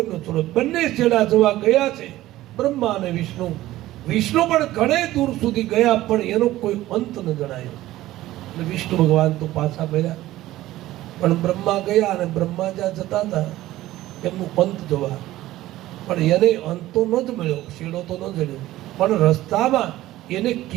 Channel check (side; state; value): left; quieter; 15.7 dB